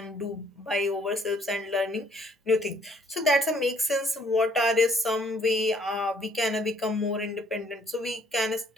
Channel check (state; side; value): normal; both; correlation 0.63